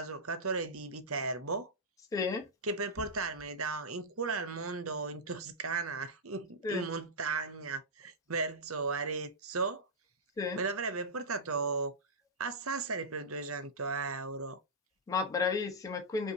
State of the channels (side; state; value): both; normal; correlation -0.09